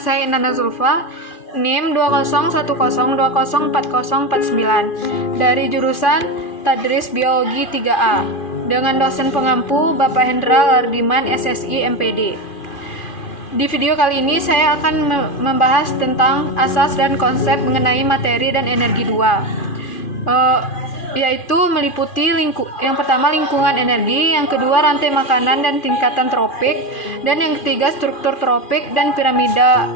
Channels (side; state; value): right; late; 2.4 ms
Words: saya Inana Zulfa, NIM 20110204049 dari jurusan Tadris Biologi 3A dengan dosen pengampu Bapak Hendra Lardiman SSI MPD. Di video kali ini saya akan membahas tentang asas dan konsep mengenai materi dan energi 2. Yaitu meliputi yang pertama lingkungan energi, yang kedua rantai makanan dan tingkatan tropik, dan yang ketiga struktur tropik dan piramida